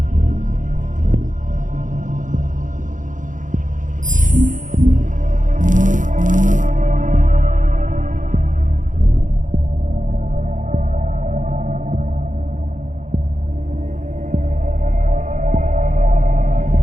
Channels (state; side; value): late; left; 0.37 ms